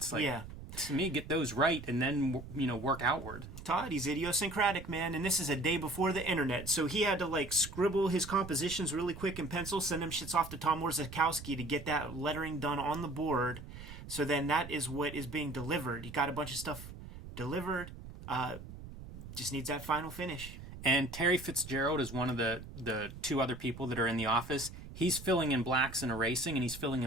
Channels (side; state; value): right; noise; rumble, 13 dB below the sound